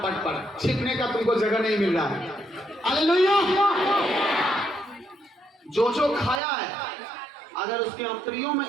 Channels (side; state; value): left; drops out; at 6.4 s